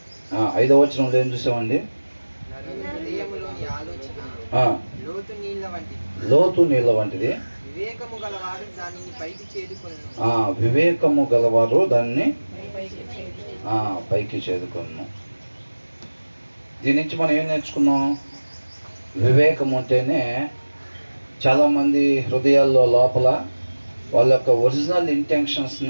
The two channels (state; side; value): inverted; both; correlation -1.00